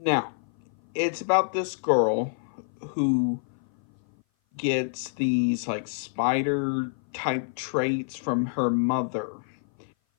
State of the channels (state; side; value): silent; right; 56 dB below the other